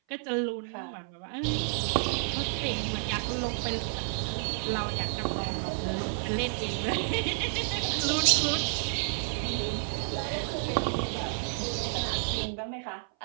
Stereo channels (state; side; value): silent; left; 58 dB below the other